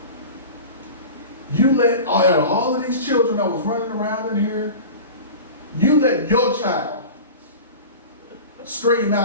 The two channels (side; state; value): both; inverted; correlation -0.34